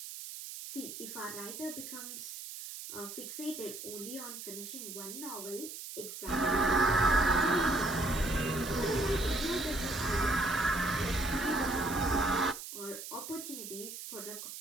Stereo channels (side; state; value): right; noise; hiss, 10 dB below the sound